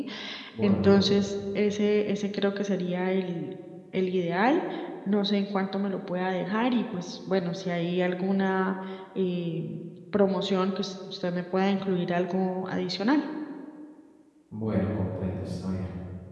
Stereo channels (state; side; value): identical; both; correlation 1.00